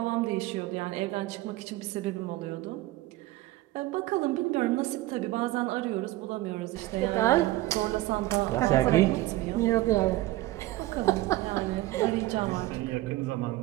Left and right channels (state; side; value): quieter; left; 17.4 dB